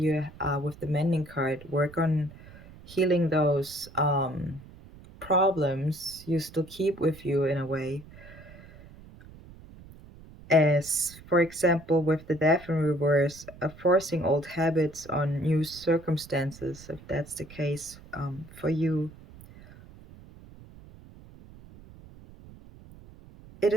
with the Mending card, work on healing those problems you still keep with you in a way. As, for example, with the Death in Reverse, forcing old habits on new circumstances, if that's the case for you. It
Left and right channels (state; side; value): noise; right; rumble, 20 dB below the sound